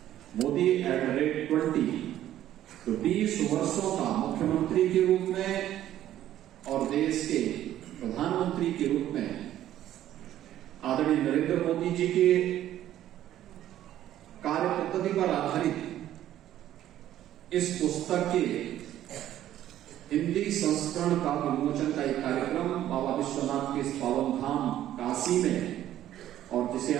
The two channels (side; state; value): left; quieter; 12.4 dB